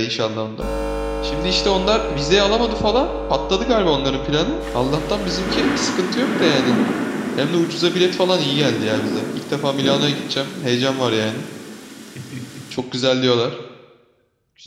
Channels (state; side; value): identical; both; correlation 1.00